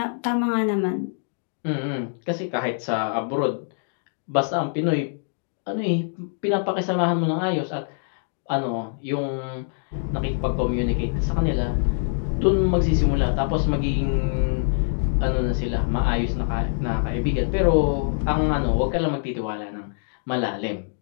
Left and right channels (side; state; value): right; silent; digital silence